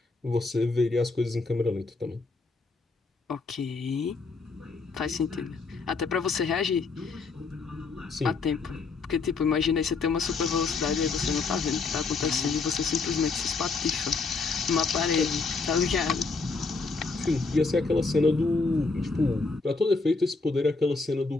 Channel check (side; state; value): right; quieter; 4.2 dB